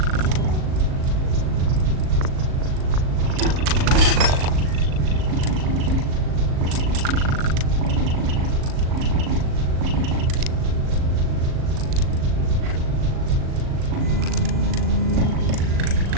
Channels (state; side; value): late; left; 38 ms